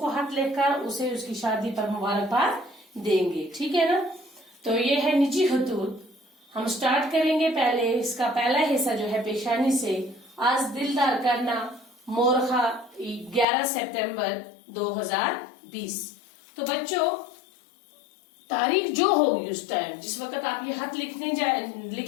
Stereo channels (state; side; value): drops out; right; at 13.5 s